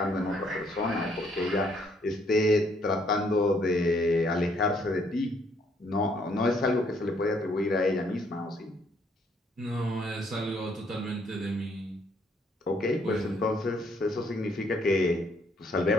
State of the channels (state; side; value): normal; both; correlation 0.68